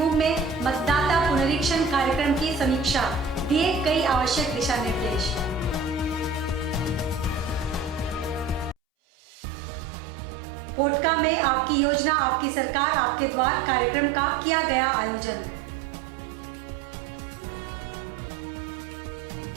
में मतदाता पुनरीक्षण कार्यक्रम की समीक्षा, दिए कई आवश्यक दिशा निर्देश। कोटका में आपकी योजना आपकी सरकार आपके द्वार कार्यक्रम का किया गया आयोजन।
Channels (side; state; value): left; drops out; at 8.8 s